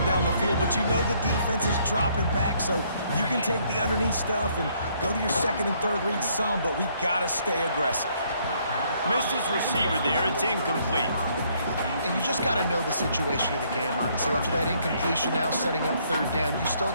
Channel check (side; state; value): both; inverted; correlation -0.67